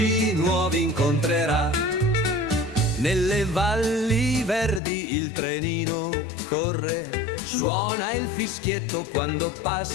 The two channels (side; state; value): right; drops out; at 4.8 s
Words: nuovi incontrerà. Nelle valli verdi il trenino corre, suona il fischietto quando